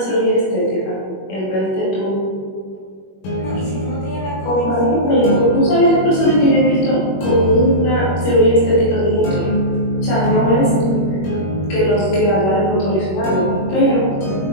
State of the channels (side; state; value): right; late; 21 ms